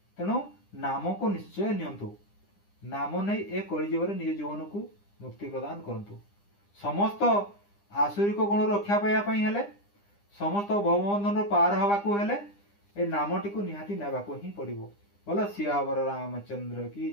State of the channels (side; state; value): right; late; 9.9 ms